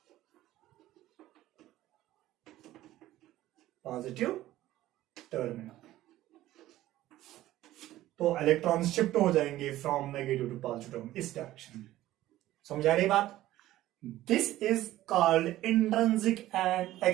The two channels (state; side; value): quieter; left; 15.0 dB